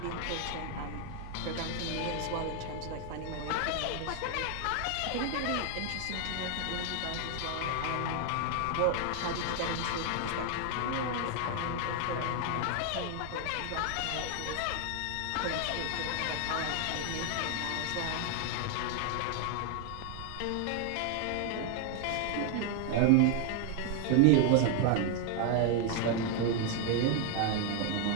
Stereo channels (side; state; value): both; different; correlation 0.00